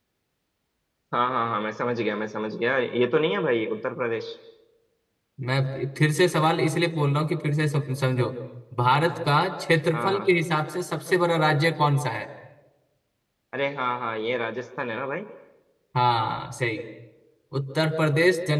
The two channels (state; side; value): identical; both; correlation 1.00